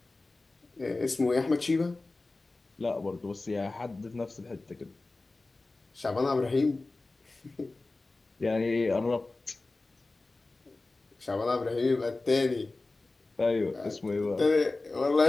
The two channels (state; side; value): quieter; right; 3.3 dB